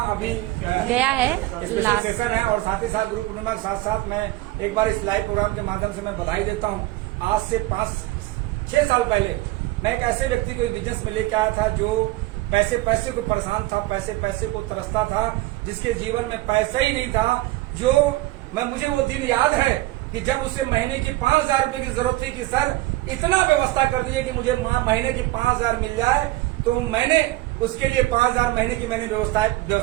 अभी गया है स्पेशल सेशन है। और साथ ही साथ गुरु पूर्णिमा के साथ साथ मैं एक बार इस लाइव प्रोग्राम के माध्यम से मैं बधाई देता हूँ। आज से 5-6 साल पहले मैं एक ऐसे व्यक्ति को बिजनेस में लेके आया था जो पैसे को परेशान था, पैसे को तरसता था, जिसके जीवन में पैसा ही नहीं था। जो मुझे वो दिन याद है कि जब उसे महीने की 5,000 रुपए की जरूरत थी कि सर इतना व्यवस्था कर दीजिए कि मुझे महीने की 5,000 मिल जाए। तो मैंने उसके लिए 5,000 महीने की मैंने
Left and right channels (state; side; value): quieter; left; 18.7 dB